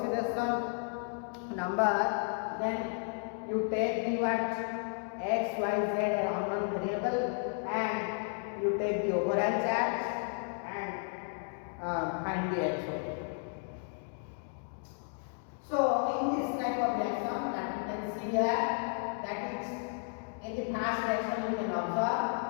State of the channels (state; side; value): silent; right; 56 dB below the other